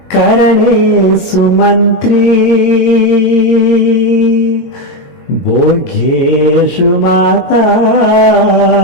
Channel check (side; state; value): right; late; 22 ms